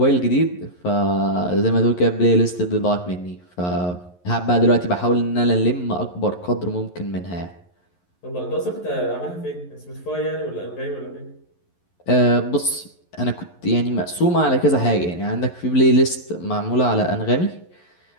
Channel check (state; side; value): late; right; 11 ms